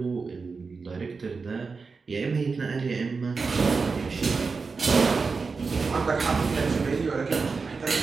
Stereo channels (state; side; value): quieter; left; 4.6 dB